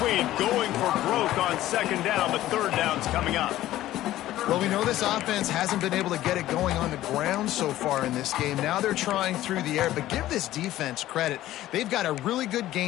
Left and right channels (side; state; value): right; quieter; 14.5 dB